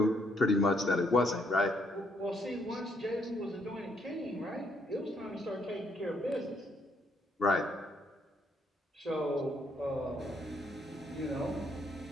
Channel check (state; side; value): normal; both; correlation 0.71